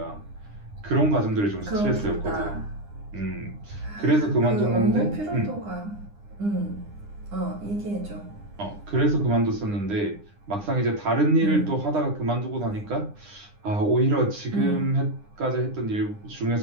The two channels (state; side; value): late; left; 9.8 ms